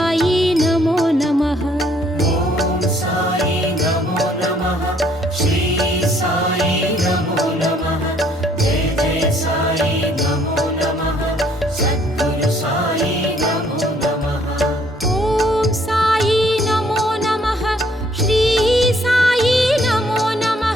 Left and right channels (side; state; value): both; normal; correlation 0.64